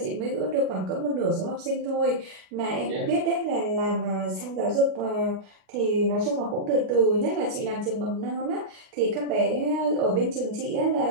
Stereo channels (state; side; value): late; left; 38 ms